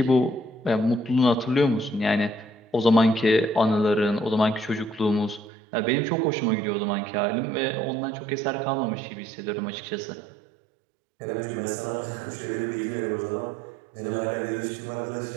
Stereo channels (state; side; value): drops out; left; at 5.5 s